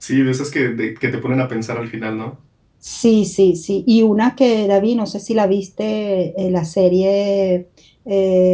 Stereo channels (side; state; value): both; identical; correlation 1.00